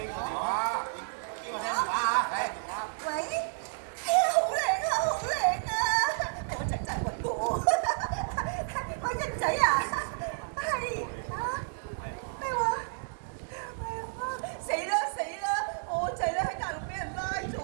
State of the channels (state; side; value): silent; left; 57 dB below the other